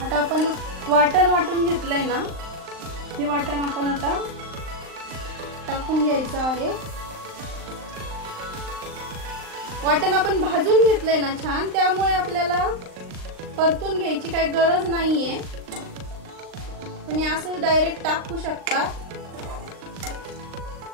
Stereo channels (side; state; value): left; late; 39 ms